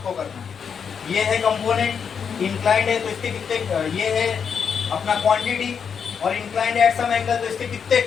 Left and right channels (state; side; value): quieter; right; 6.8 dB